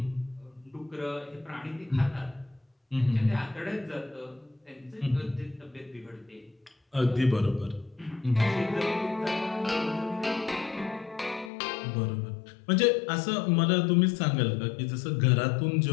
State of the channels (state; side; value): drops out; right; at 11.5 s